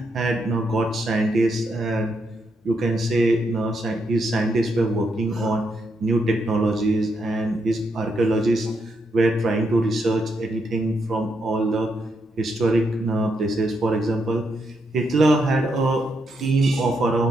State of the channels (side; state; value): both; normal; correlation 0.80